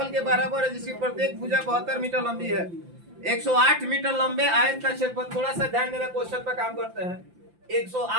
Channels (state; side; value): late; left; 5.8 ms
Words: के बराबर है जिसकी प्रत्येक भुजा 72 मीटर लंबी है। 108 मीटर लंबे आयत का क्षेत्रफल, थोड़ा सा ध्यान देना, क्वेश्चन पर काम करते हैं।